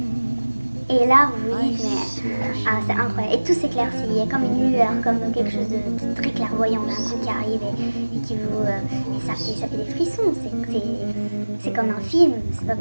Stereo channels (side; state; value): both; inverted; correlation -1.00